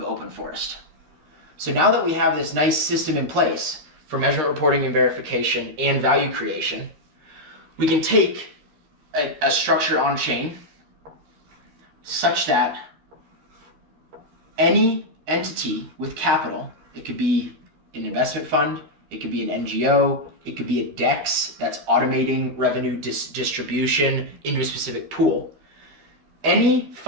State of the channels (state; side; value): late; left; 13 ms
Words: Open Forest. So now that we have this nice system in place for measurement reporting and verification and value creation, we can take a structure on chain such that any entity with capital, it could be an investment fund, it could be an NGO, it could be a DEX that's automating revenue distribution into a specific pool. Any